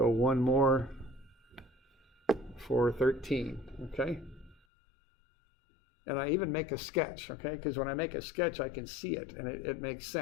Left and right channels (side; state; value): right; drops out; at 4.5 s